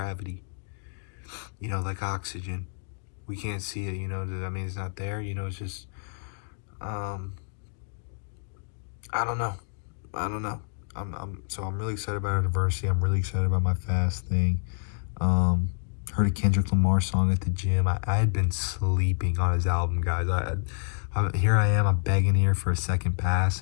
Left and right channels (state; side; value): silent; right; digital silence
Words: like oxygen. We can't see it, I mean, it's not there, it's just, I don't know. I'm really excited about our diversity. I'm really excited about my fast thing. Heard a Kendrick Lamar song at the gym. I had been sleeping on his album, guys. Here I am, I'm begging here for a second pass,